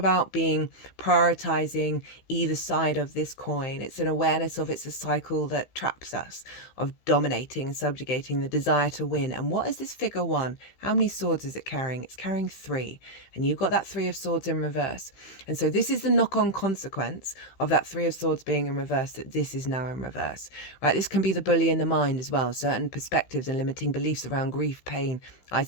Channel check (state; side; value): late; right; 16 ms